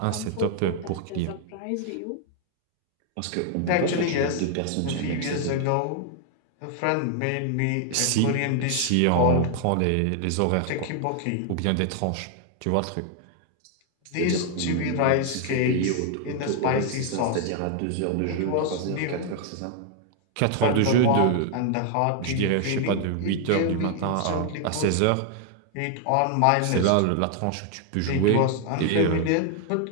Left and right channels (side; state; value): both; different; correlation 0.00